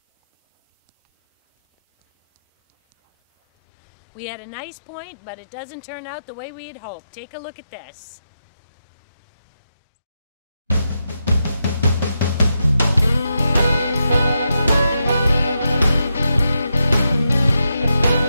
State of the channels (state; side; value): inverted; both; correlation -0.86